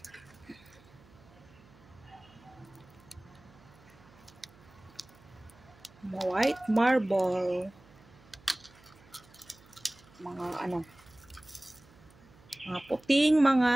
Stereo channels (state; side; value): noise; right; hum, 25 dB below the sound